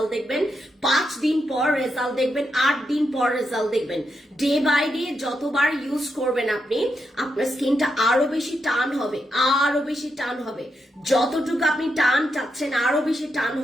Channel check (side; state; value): both; normal; correlation 0.84